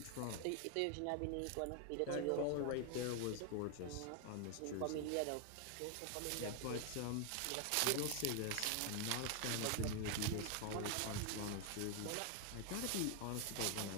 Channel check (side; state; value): both; different; correlation 0.00